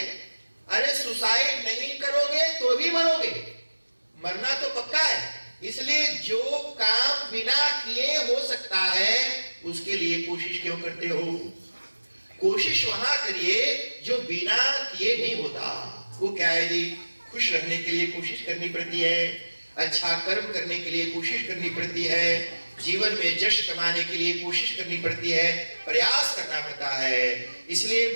अरे सुसाइड नहीं करोगे तो भी मरोगे, मरना तो पक्का है। इसलिए जो काम बिना किए हो सकता है उसके लिए कोशिश क्यों करते हो? कोशिश वहां करिए जो बिना किए नहीं होता। वो क्या है जी? खुश रहने के लिए कोशिश करनी पड़ती है, अच्छा कर्म करने के लिए कोशिश करनी पड़ती है, जीवन में यश कमाने के लिए कोशिश करनी पड़ती है, प्रयास करना पड़ता है। इसलिए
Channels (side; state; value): both; inverted; correlation -1.00